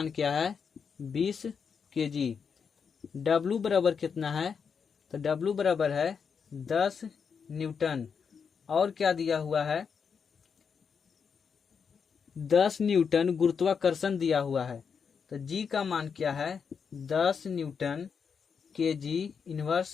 क्या है 20 केजी। W बराबर कितना है, तो W बराबर है 10 न्यूटन और क्या दिया हुआ है 10 न्यूटन गुरुत्वाकर्षण दिया हुआ है। तो G का मान क्या है 10 न्यूटन केजी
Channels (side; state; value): right; quieter; 6.3 dB